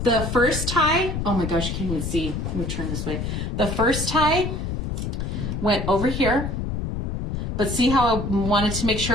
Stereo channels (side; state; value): left; noise; rumble, 3 dB below the sound